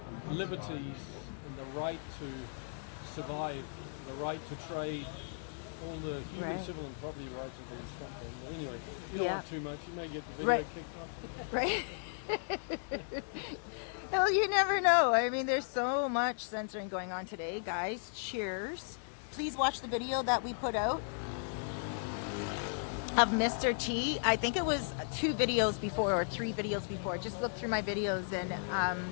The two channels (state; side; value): silent; right; digital silence